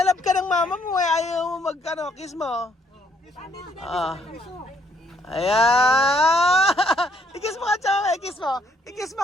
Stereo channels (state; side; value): normal; both; correlation 0.68